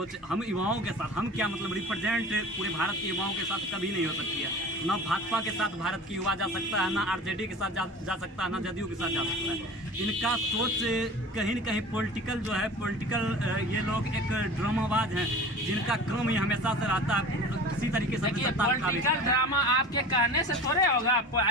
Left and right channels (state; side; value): normal; both; correlation 0.38